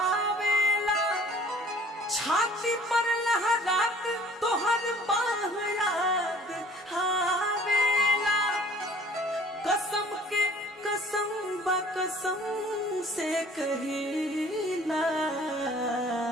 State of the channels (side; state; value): both; normal; correlation 0.51